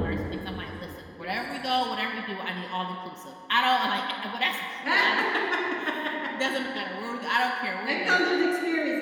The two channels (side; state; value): both; identical; correlation 1.00